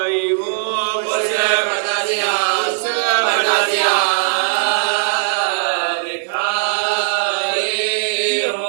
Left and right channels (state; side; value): silent; left; 62 dB below the other